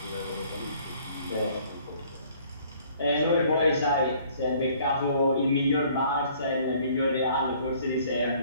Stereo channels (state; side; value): inverted; both; correlation -0.58